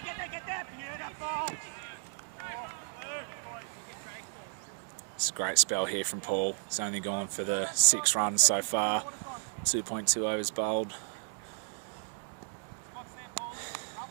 It's a great spell here from Paul. He's only gone for the 6 runs so far. 2.2 overs bowled.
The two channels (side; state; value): left; silent; digital silence